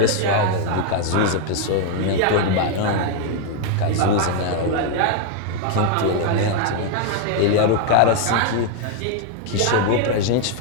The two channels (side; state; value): both; different; correlation 0.01